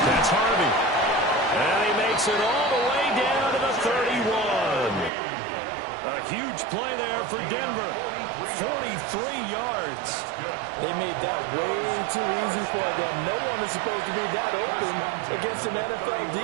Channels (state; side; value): drops out; left; at 5.1 s